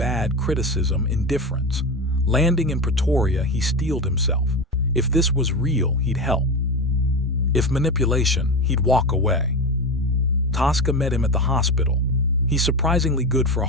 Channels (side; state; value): both; normal; correlation 0.21